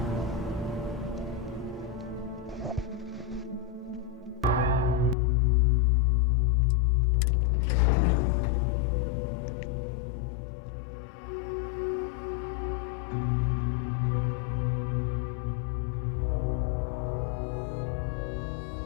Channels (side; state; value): right; drops out; at 5.2 s